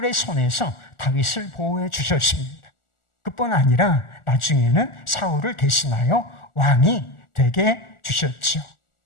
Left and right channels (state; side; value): late; right; 1.4 ms